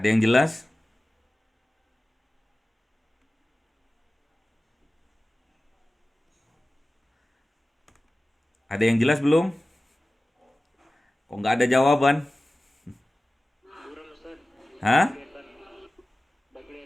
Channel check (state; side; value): normal; both; correlation 0.96